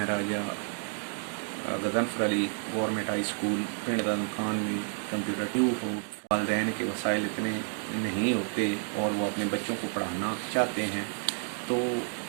राजा Ghazanfar Ali government high school पिंड दादम खान में कंप्यूटर ट्यूब हो। वालदैन के वसाइल इतने नहीं होते और वो अपने बच्चों को पढ़ाना चाहते हैं, तो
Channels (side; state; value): left; silent; 58 dB below the other